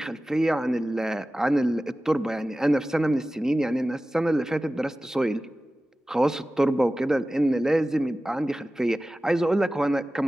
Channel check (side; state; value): both; normal; correlation 0.96